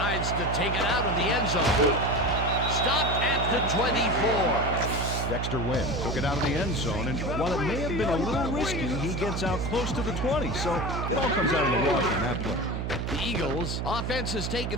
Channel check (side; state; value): right; noise; hum, 2 dB below the sound